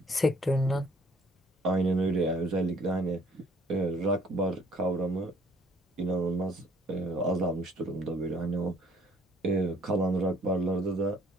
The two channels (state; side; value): normal; both; correlation 0.60